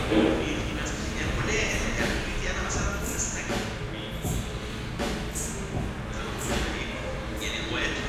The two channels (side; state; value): both; identical; correlation 1.00